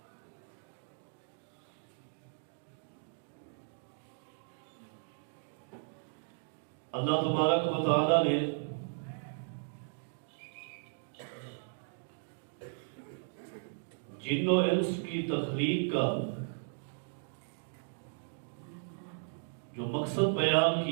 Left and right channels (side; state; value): left; silent; digital silence